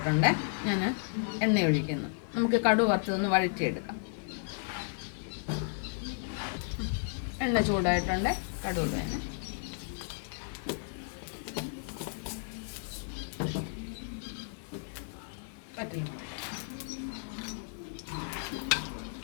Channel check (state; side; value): silent; right; 55 dB below the other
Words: ഞാൻ എണ്ണ ഒഴിക്കുന്നു. നമുക്ക് കടുക് വറുത്തതൊന്ന് വഴറ്റിയെടുക്കാം. എണ്ണ ചൂടായിട്ടുണ്ട്. കടുക് വേണം. പറ്റില്ല.